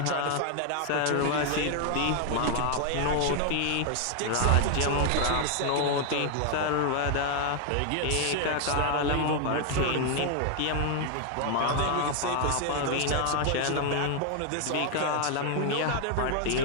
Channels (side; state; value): both; different; correlation 0.00